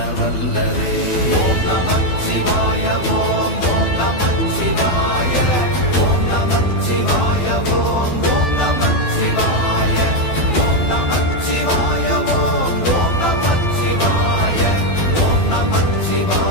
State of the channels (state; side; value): late; right; 12 ms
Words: வல்லரே. ஓம் நமச்சிவாய ஓம் ஓம் நமச்சிவாய ஓம் நமச்சிவாய ஓம் ஓம் நமச்சிவாய ஓம் நமச்சிவாய ஓம் ஓம் நமச்சிவாய ஓம்